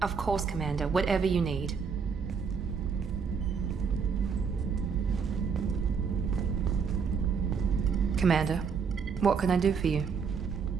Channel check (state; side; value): quieter; left; 5.9 dB